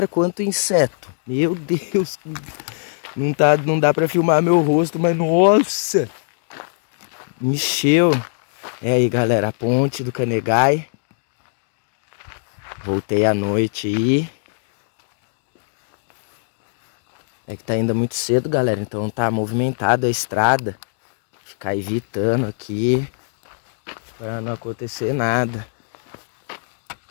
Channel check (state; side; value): silent; right; digital silence